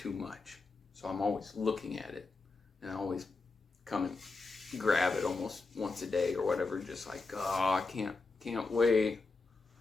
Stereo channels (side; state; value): right; quieter; 3.8 dB